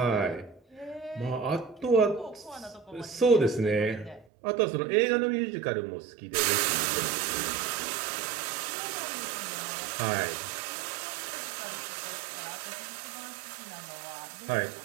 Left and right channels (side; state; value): left; drops out; at 4.2 s